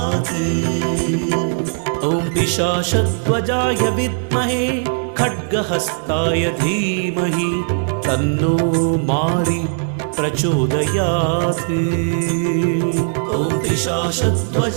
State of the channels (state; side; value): silent; left; digital silence